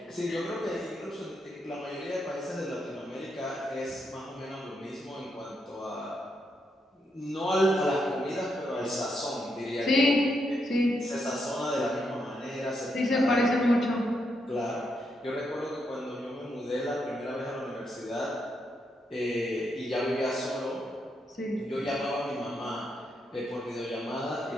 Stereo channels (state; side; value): normal; both; correlation 0.80